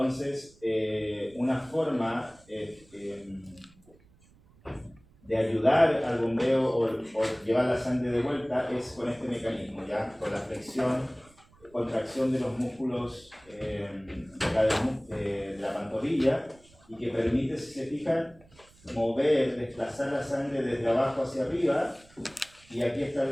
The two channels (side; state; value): right; noise; rumble, 28 dB below the sound